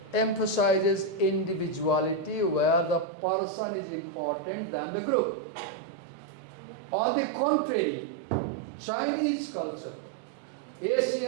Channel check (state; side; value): drops out; left; at 3.1 s